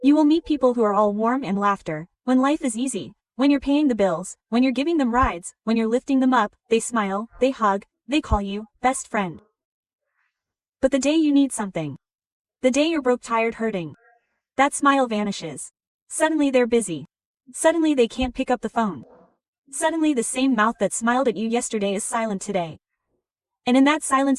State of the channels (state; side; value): identical; both; correlation 1.00